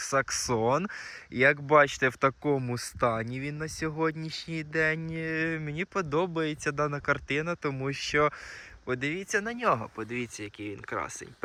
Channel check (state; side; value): identical; both; correlation 1.00